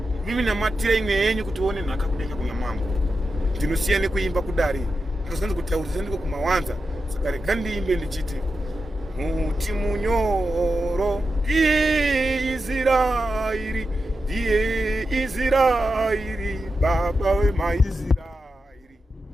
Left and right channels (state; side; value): normal; both; correlation 0.89